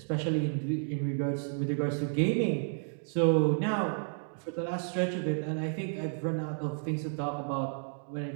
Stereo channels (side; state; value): left; silent; digital silence